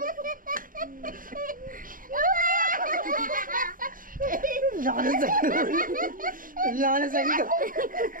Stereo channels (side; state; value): left; late; 0.40 ms